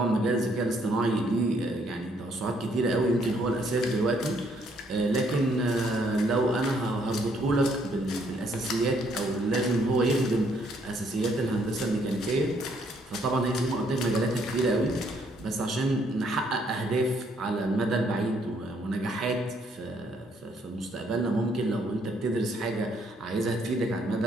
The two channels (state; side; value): normal; both; correlation 0.68